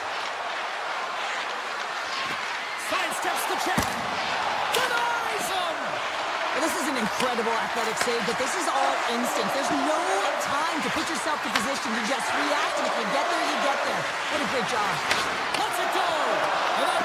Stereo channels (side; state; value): both; identical; correlation 1.00